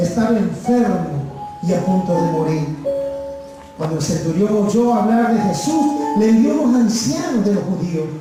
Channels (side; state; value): both; identical; correlation 1.00